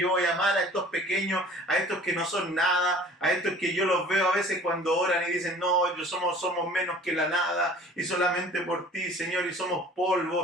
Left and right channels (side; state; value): both; normal; correlation 0.47